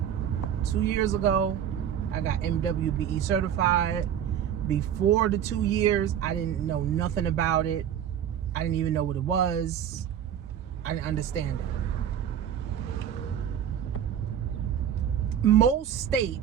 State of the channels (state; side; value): quieter; left; 9.4 dB